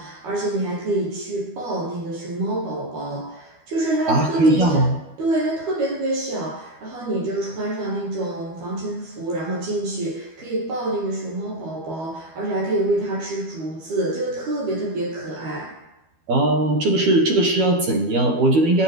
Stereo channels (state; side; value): late; left; 12 ms